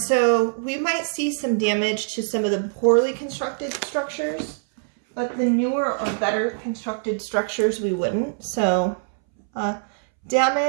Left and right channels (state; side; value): silent; left; 63 dB below the other